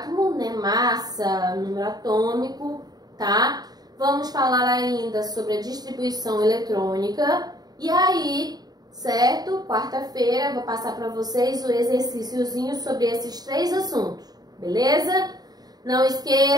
né? Massa, número atômico, tá? Vamos falar ainda sobre a distribuição eletrônica. E aí, certo? Quarta-feira vou passar para vocês o exercíciozinho sobre esses 3 assuntos, beleza? Não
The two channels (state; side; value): late; left; 0.19 ms